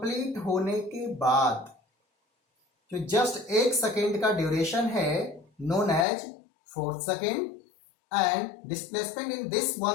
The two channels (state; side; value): drops out; right; at 6.1 s